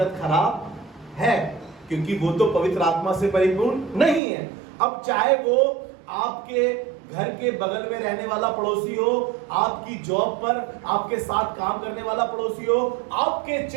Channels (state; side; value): drops out; left; at 4.2 s